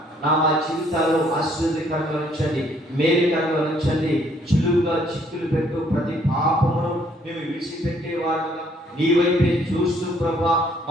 నా మా జీవితాల్లో ఆశీర్వాదకరంగా ఉంచండి, మేలుకరంగా ఉంచండి. చులువుగా చిక్కులు పెట్టు ప్రతి పాపమును మేము విడిచిపెట్టేవాడుగా నీ వైపే చూస్తూ ప్రభా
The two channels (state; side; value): normal; both; correlation 0.65